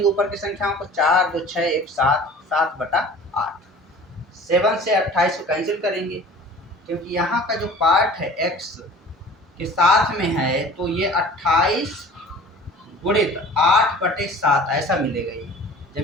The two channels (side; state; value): both; normal; correlation 0.44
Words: ऊपर की संख्याओं को, 4 2 6 1 7, 7/8, 7 से 28 को कैंसिल करेंगे, क्योंकि यहाँ का जो पार्ट है x के साथ में है तो ये 28 गुणित 8/7 ऐसा मिलेगा। ये